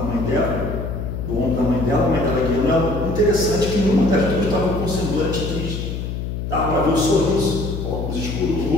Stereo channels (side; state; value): left; noise; hum, 4 dB below the sound